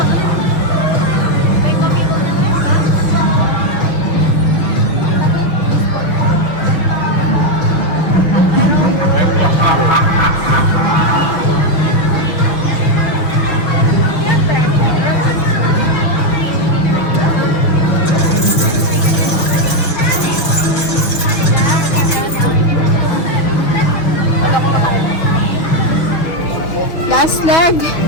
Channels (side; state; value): right; late; 6.2 ms